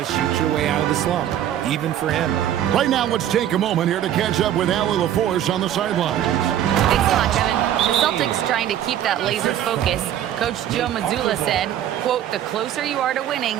shoot your way out of the slump, even for him. Right now, let's take a moment here to catch up with Allie LaForce on the sidelines. Thanks a lot, Kevin. The Celtics trying to keep that laser focus. Coach Joe Mazzulla said, quote, "The closer you are to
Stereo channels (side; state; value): left; quieter; 11.1 dB